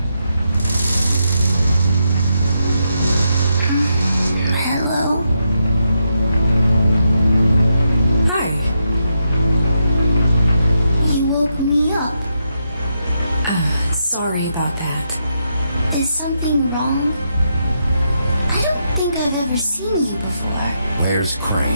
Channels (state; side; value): inverted; both; correlation -0.82